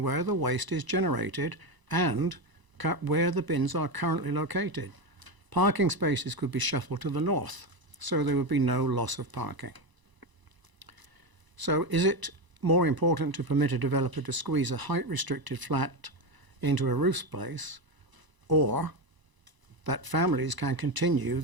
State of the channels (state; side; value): late; left; 1.0 ms